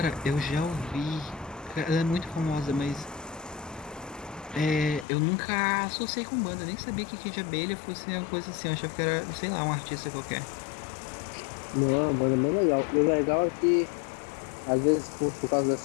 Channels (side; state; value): right; drops out; at 5.1 s